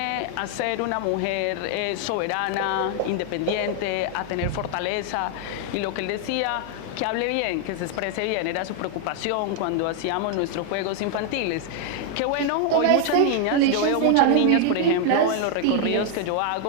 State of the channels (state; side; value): different; both; correlation 0.00